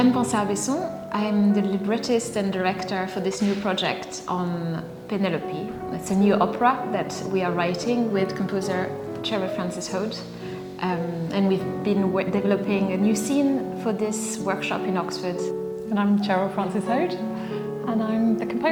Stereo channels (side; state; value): both; identical; correlation 1.00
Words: Pansard-Besson. I'm the librettist and director for this new project on Penelope. It's a new opera that we are writing with composer Cheryl Frances-Hoad. And we've been developing a new scene for this workshop in Oxford. And I'm Cheryl Frances-Hoad, and I'm the